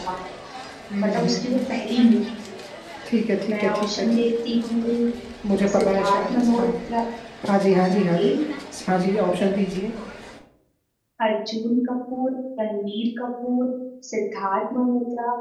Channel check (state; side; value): identical; both; correlation 1.00